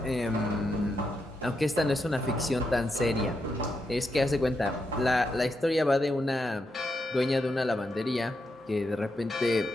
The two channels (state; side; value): normal; both; correlation 0.83